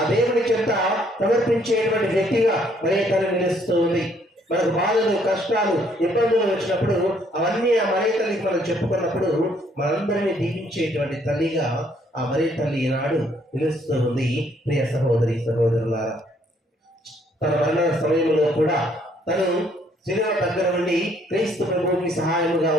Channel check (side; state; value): both; normal; correlation 0.66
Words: దేవుని చెంత సమర్పించేటువంటి వ్యక్తిగా మరే తల్లి నిలుస్తూ ఉంది. మనకు బాధలు కష్టాలు ఇబ్బందులు వచ్చినప్పుడు అవన్నీ ఆ మరే తల్లికి మనం చెప్పుకున్నప్పుడు మనందరినీ దీవించేటువంటి తల్లిగా ఆ మరే తల్లి ఈనాడు నిలుస్తూ ఉంది. ప్రియ సహోదరి సహోదరులారా తన మరణ సమయంలో కూడా తను శిలువ దగ్గర నుండి క్రీస్తు ప్రభువుకి సహాయముగా